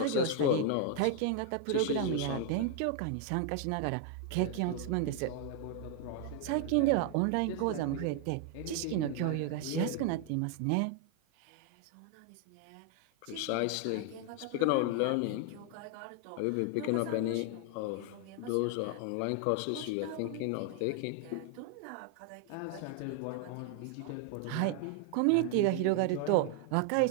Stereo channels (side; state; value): both; different; correlation 0.00